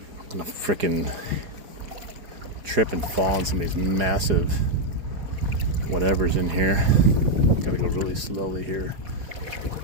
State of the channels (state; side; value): late; left; 4.9 ms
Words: gonna frickin' trip and fall on some of these massive whatever's in here. Gotta go really slowly here.